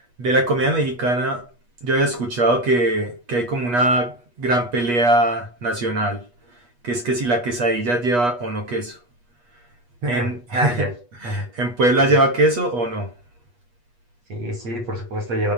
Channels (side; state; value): left; late; 8.3 ms